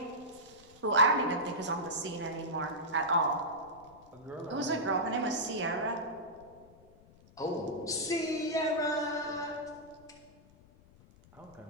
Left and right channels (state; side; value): noise; left; rumble, 25 dB below the sound